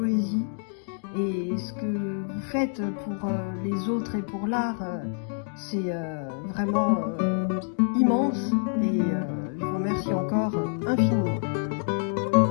Et ce que vous faites pour les autres et pour l'art, c'est vraiment immense. Et je vous remercie encore infiniment.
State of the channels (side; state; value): right; silent; digital silence